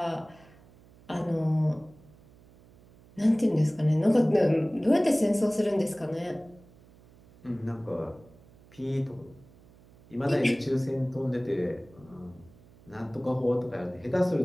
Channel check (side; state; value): right; noise; hum, 26 dB below the sound